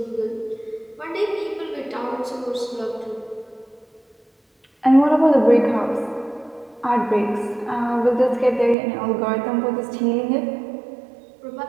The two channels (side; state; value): left; drops out; at 8.8 s